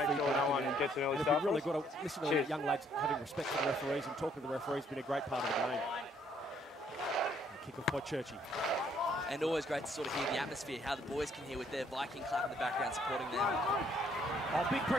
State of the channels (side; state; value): both; normal; correlation 0.66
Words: Sure no one gets an early We've start. really got to listen to the young lads having respect for the referees and talking to the referees. Been a great part of the game. Kick off by Churchie. And always great to sort of hear the atmosphere, how the boys can hear with their Viking clap in the background supporting them. Oh, big